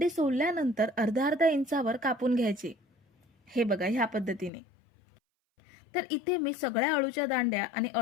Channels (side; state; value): right; drops out; at 4.5 s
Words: सोलल्यानंतर अर्धा अर्धा इंचावर कापून घ्यायचे. हे बघा, ह्या पद्धतीने. तर इथे मी सगळ्या अळूच्या दांड्या आणि